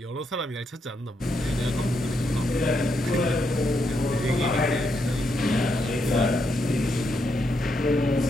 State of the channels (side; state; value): both; normal; correlation 0.80